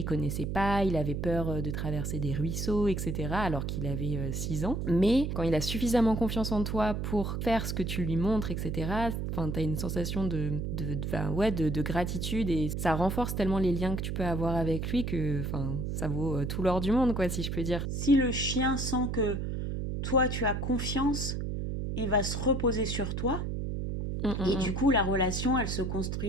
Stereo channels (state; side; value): noise; right; hum, 2 dB below the sound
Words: connaissait pas, il avait peur de traverser des ruisseaux, etc., alors qu'il avait 6 ans. Mais quand il a suffisamment confiance en toi pour faire ce que tu lui montres, etc., enfin, t'as une sensation de gratitude et ça renforce tellement les liens que tu peux avoir avec lui que enfin, ça vaut tout l'or du monde, quoi, si je peux dire. Si le chien sent que toi, tu as confiance, il va se reposer sur toi. Hum, hum, Et hum. du coup, la relation, elle se